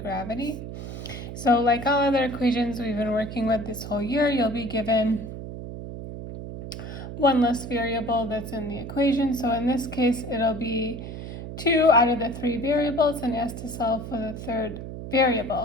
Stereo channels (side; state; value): right; noise; hum, 9 dB below the sound